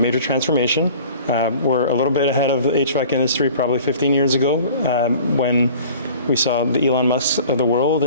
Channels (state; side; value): inverted; both; correlation -0.46